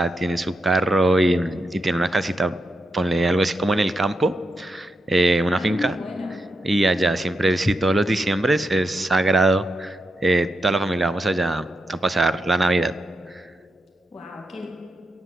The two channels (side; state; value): both; normal; correlation 0.85